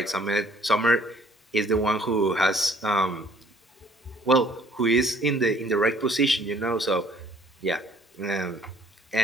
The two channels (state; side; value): normal; both; correlation 0.58